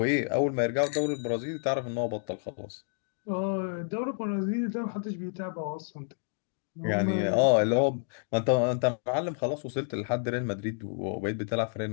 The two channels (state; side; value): silent; right; digital silence